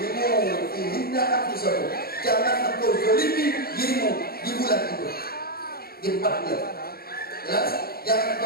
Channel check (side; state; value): right; late; 0.44 ms